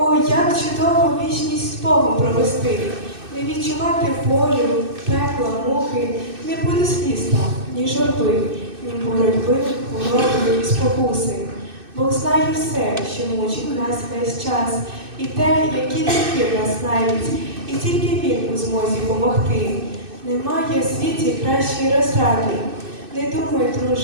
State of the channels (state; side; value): late; left; 2.6 ms